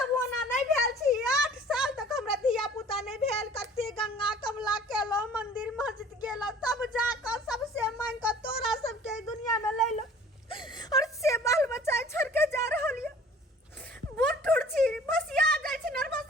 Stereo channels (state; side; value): normal; both; correlation 0.49